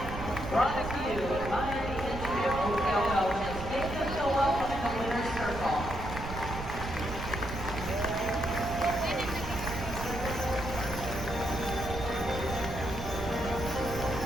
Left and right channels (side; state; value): right; noise; rumble, 7 dB below the sound